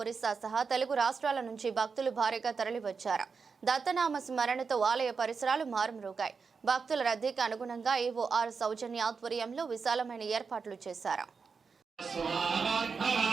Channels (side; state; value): left; quieter; 5.3 dB